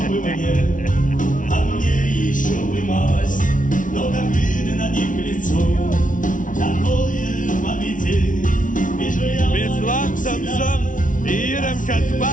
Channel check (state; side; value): late; right; 0.38 ms